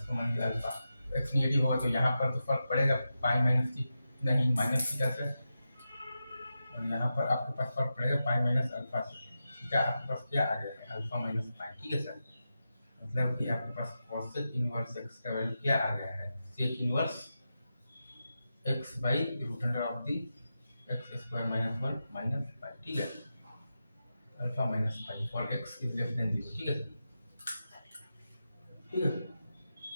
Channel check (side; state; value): both; inverted; correlation -0.90